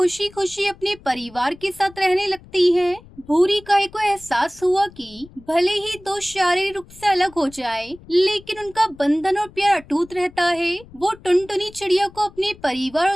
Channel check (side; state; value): left; noise; rumble, 22 dB below the sound